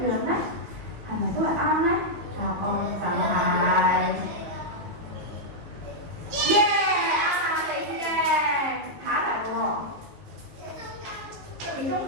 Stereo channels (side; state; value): left; late; 18 ms